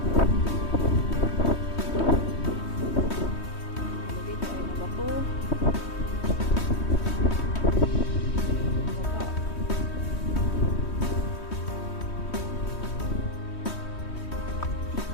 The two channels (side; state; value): right; late; 3.2 ms